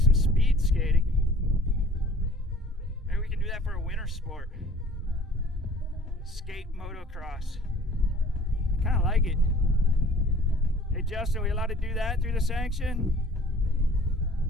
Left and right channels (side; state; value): both; normal; correlation 0.50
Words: speed skating. Maybe we can do that for a winter sport. Skate motocross. I kind of like it. Hey Justin, are we allowed to do that through the sanction?